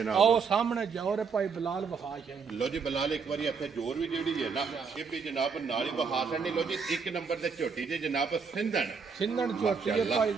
आओ सामने जोर है भाई बिलाल वहा है। लो जी बिलाल एक बारी इत्थे जोर भी जेड़ी है ना ये भी जनाब नाल ही वहा छड़नी। लो जी एक नंबर ते झोटी जे जनाब सिंधड़ झोटी है भाई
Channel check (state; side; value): quieter; left; 5.5 dB